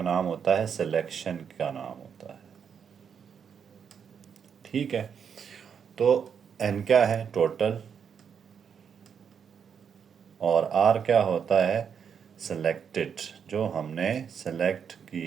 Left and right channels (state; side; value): quieter; left; 7.3 dB